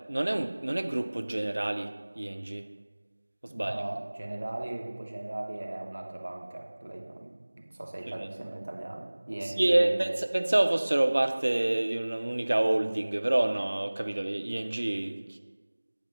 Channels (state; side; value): inverted; both; correlation -1.00